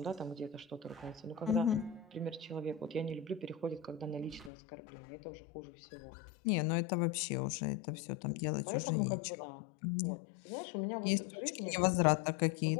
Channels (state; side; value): drops out; right; at 4.5 s